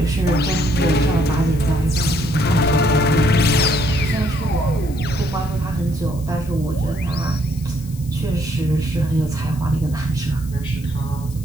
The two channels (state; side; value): noise; left; hiss, 21 dB below the sound